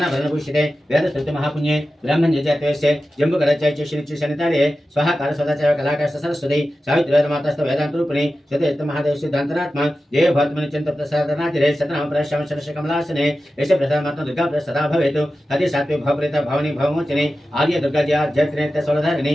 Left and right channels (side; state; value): both; normal; correlation 0.93